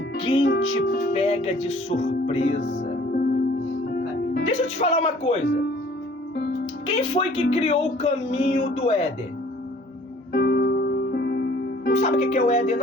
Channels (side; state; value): both; normal; correlation 0.54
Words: te pega de surpresa. Deixa eu te falar uma coisa. Quem foi que criou o caminho do Éden? Não sabe o que é o Éden